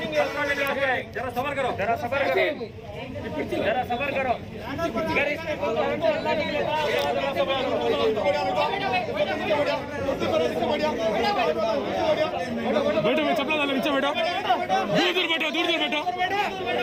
जरा सबर करो, जरा सबर करो, जरा सबर करो। अगर इसमें बैठो मैं चपला डालो नीचे बैठो, दूर दूर बैठो, दूर दूर बैठो,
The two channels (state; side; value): identical; both; correlation 1.00